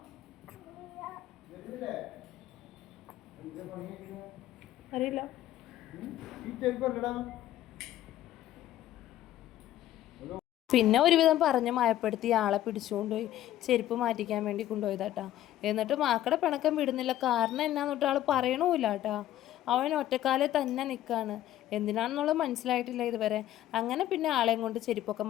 അറിയില്ല. പിന്നെ ഒരുവിധം പറഞ്ഞ് മയപ്പെടുത്തി ആളെ പിടിച്ചുകൊണ്ടുപോയി ചെരുപ്പ് മാറ്റിക്കാൻ വേണ്ടി കൊണ്ടുപോയതാട്ടാ. എന്നിട്ട് മാക്കടെ പിണക്കം വിടുന്നില്ല. കാരണം എന്നാന്നിട്ട് ആൾ പറയണമില്ല കേട്ടാ. അവൻ ഒറ്റക്കാലെ തന്നെ നിൽക്കുകയാണ്. എന്തിനാണെന്നുള്ളത് മനസ്സിലായിട്ടില്ല ഇതുവരെ. അങ്ങനെ പിന്നെ ആളെയും കൊണ്ട് ചെരുപ്പൊക്കെ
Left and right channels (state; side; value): quieter; right; 13.2 dB